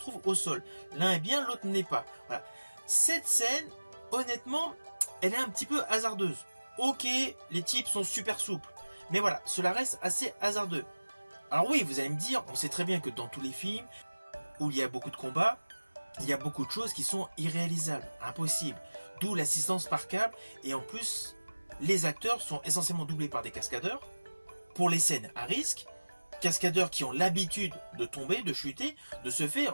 au sol. L'un est bien, l'autre n'est pas. Voilà. Cette scène, honnêtement, elle est un petit peu hasardeuse. Ok, les types sont super souples, mais voilà, cela reste assez hasardeux. Alors oui, vous allez me dire, on sait très bien que dans tous les films où il y a beaucoup de combats, il y a beaucoup de choses qui sont irréalisables, impossibles. D'où l'assistance par câble, et en plus, les acteurs sont essentiellement doublés par des cascadeurs. Pour les scènes à risque, cascadeurs qui ont l'habitude de tomber, de chuter, de ce fait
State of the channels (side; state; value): both; inverted; correlation -1.00